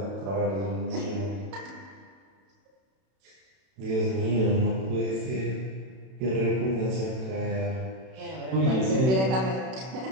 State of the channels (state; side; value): late; left; 31 ms